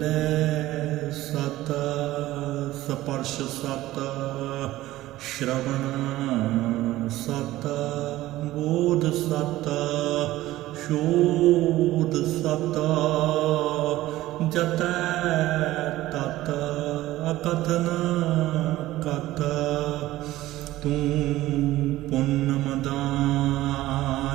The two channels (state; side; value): quieter; left; 16.2 dB